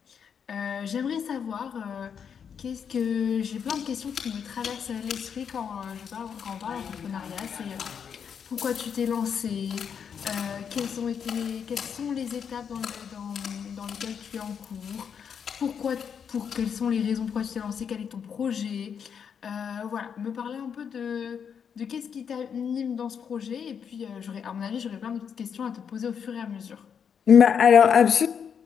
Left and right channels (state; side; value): quieter; right; 7.3 dB